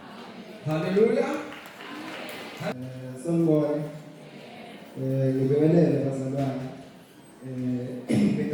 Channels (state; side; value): identical; both; correlation 1.00